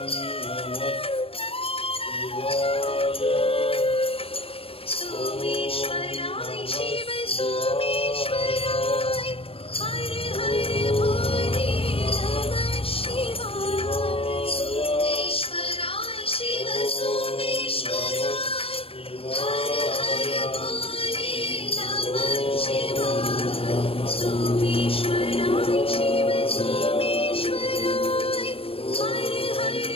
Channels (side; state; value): right; late; 0.27 ms